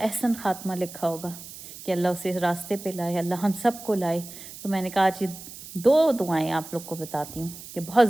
ख़ात्मा लिखा होगा कि अल्लाह उसे रास्ते पे लाए, अल्लाह हम सब को लाए। तो मैंने कहा आज ये 2 दुआएं आप लोग को बताती हूँ कि बहुत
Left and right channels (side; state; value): right; noise; hiss, 14 dB below the sound